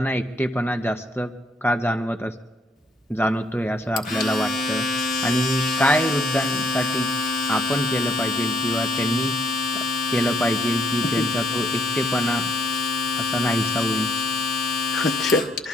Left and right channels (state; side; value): normal; both; correlation 0.68